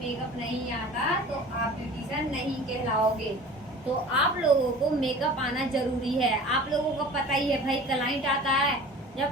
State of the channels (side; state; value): both; normal; correlation 0.41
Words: नहीं आता तो आप ब्यूटिशियन नहीं कहलाओगे। तो आप लोगों को मेकअप आना जरूरी है। आप लोगों को पता ही है भाई, क्लाइंट आता है